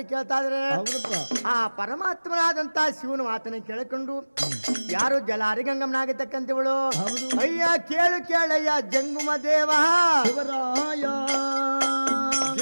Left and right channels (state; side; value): inverted; both; correlation -1.00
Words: ಕೇಳ್ತಾ ಇದ್ರೆ ಹೌದಪ್ಪ ಆ ಪರಮಾತ್ಮನಾದಂತ ಶಿವನ ಮಾತನ್ನ ಕೇಳಿಕೊಂಡು ಯಾರು ಜಲಾರಿ ಗಂಗಮ್ಮನಾಗತಕ್ಕಂಥವಳು ಹೌದು. ಅಯ್ಯ ಕೇಳು ಕೇಳಯ್ಯ ಜಂಗುಮ ದೇವ ಶಿವರಾಯ